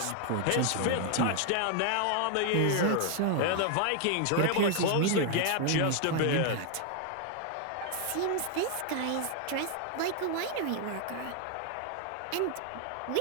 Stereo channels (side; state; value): both; different; correlation 0.00